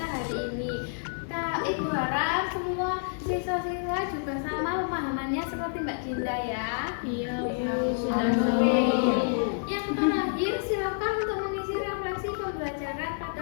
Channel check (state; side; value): silent; right; 59 dB below the other